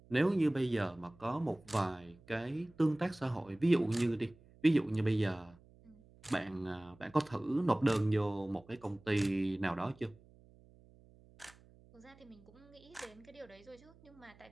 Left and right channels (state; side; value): noise; right; hum, 25 dB below the sound